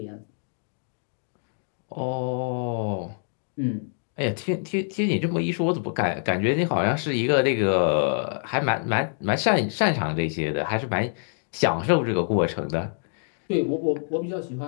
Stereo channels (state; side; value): silent; right; digital silence